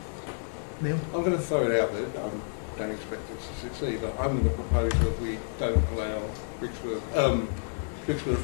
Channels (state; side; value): silent; right; 56 dB below the other